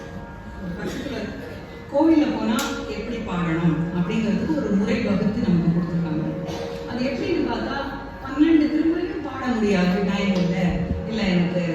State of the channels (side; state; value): both; identical; correlation 1.00